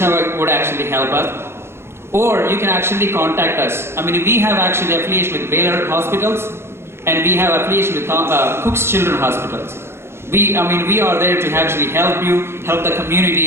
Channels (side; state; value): left; late; 0.12 ms